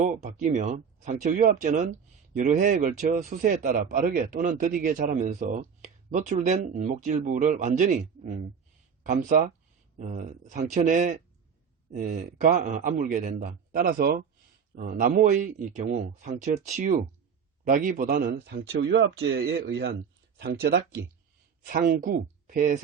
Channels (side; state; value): left; quieter; 6.7 dB